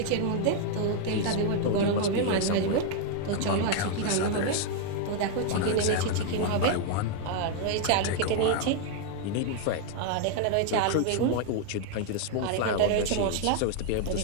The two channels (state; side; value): different; both; correlation 0.00